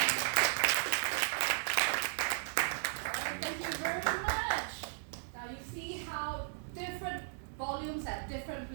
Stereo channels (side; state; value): left; silent; digital silence